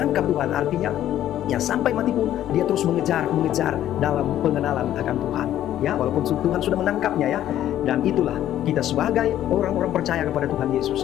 Tuhan, artinya ya sampai mati pun dia terus mengejar dalam pengenalan akan Tuhan ya, walaupun Tuhan sudah menangkapnya ya. Dan itulah kita sebagai orang-orang percaya kepada Tuhan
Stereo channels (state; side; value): quieter; right; 12.1 dB